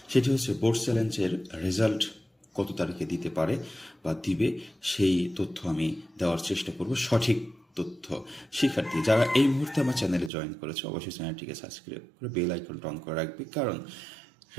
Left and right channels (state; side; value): drops out; left; at 10.3 s